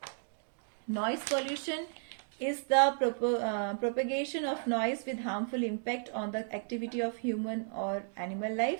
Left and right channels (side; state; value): left; silent; digital silence